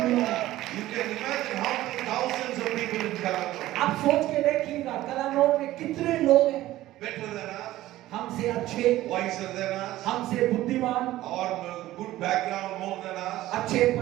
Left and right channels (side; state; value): left; quieter; 15.5 dB